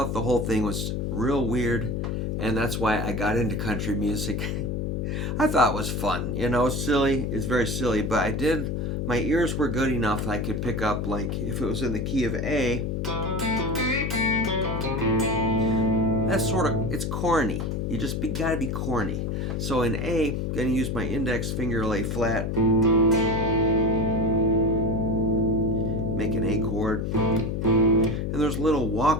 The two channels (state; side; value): noise; left; hum, 1 dB below the sound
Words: the whole thing was real weird, and that's why I got into country music. I thought it was fun, silly. It's very silly, but my ears were good enough that I could pick up, like, if it was in the key of A, that's it's corny. You just gotta be corny. So in A, I'm gonna use my index finger, lay flat, make an A chord, and there's little